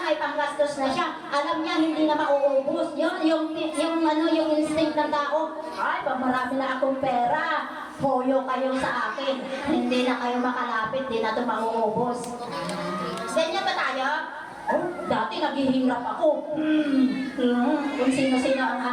may panggastos na siya, alam niya hindi na mauubos. Yun, yung instinct ng tao. Ay, pag marami na akong pera, hoyo kayo sa akin. Hindi na kayo makalapit, hindi na ito mauubos. Ganyan ba tayo? Oh, dati naghihirap ako. Kung sino-sino ang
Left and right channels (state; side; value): identical; both; correlation 1.00